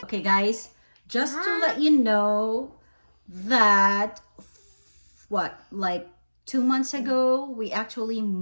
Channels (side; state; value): both; inverted; correlation -1.00